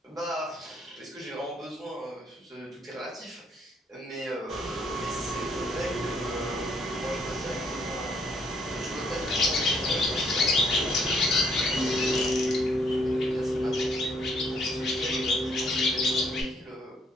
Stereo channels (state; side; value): normal; both; correlation 0.67